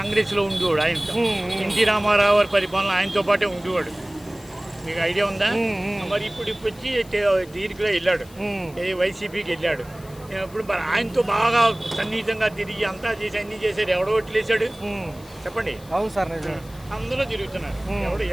ఉండేవాడు. ఆయన ఎన్టీ రామారావు గారి పరిపాలన ఆయనతో పాటే ఉండేవాడు. మీకు ఐడియా ఉందా? మరి ఇప్పుడు వచ్చి దీనికి వెళ్ళాడు, వైసీపీకి వెళ్ళాడు. ఇప్పుడు మరి ఆయనతో బాగా సన్నిహితంగా తిరిగి అంతా చేసి అన్ని చేశాడు. ఎవడో ఓట్లు వేసాడు చెప్పండి? అవును సార్, అందరూ తిరుగుతున్నారు.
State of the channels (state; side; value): noise; left; hiss, 23 dB below the sound